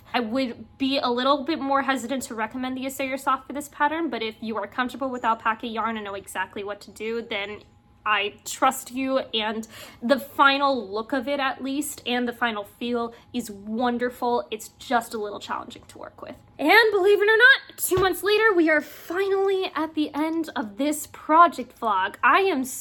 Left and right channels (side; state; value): both; identical; correlation 1.00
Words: I would be a little bit more hesitant to recommend the Assayer Soft for this pattern, but if you are comfortable with alpaca yarn and know exactly what to do, then I trust you, and the final look of it at least, and the final feel is wonderful. It's just a little challenging to work with. And believe it or not, 2 months later, we are finally at the end of this project vlog. I am